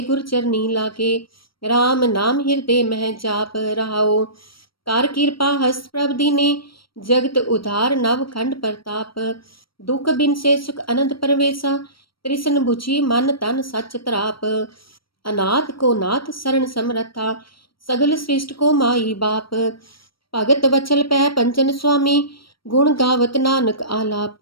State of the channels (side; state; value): right; late; 0.74 ms